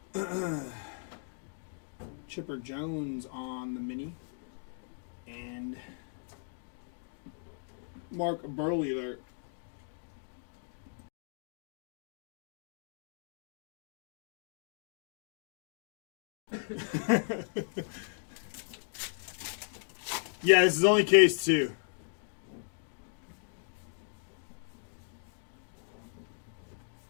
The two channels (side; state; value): right; silent; digital silence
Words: Chipper Jones on the mini. And Mark Burley there. Yeah, this is only case 2.